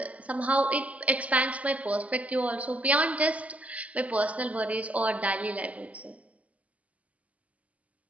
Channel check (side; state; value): left; late; 0.069 ms